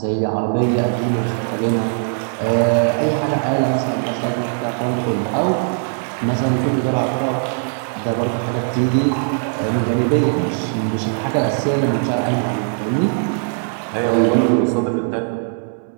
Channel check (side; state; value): left; silent; 65 dB below the other